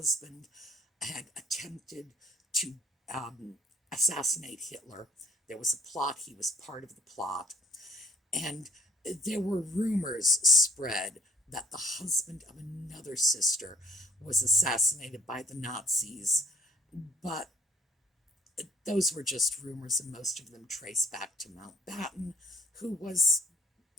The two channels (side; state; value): both; normal; correlation 0.60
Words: had attempted to assassinate Hitler. There was a plot, he was part of the plot, and there were rumors spread that the husband of another sister was assassinated by the Nazis, but those were just rumors, and most of them trace back to Mountbatten, who was